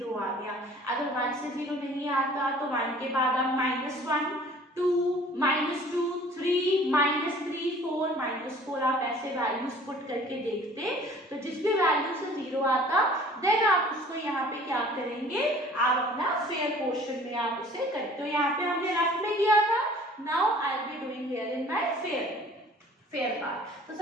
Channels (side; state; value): both; normal; correlation 0.50